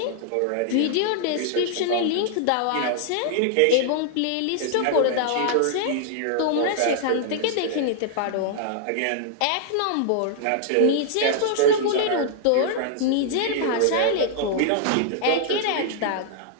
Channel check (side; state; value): both; different; correlation -0.01